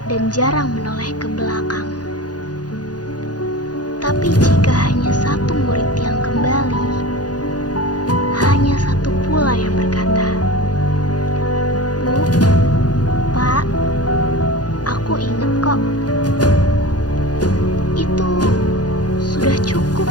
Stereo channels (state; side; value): late; right; 0.69 ms